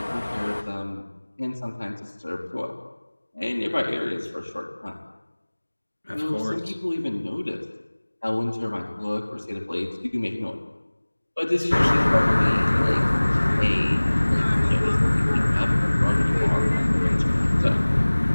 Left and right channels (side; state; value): both; inverted; correlation -1.00